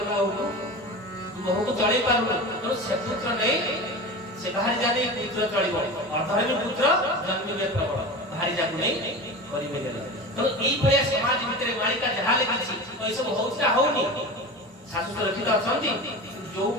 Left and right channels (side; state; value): both; normal; correlation 0.30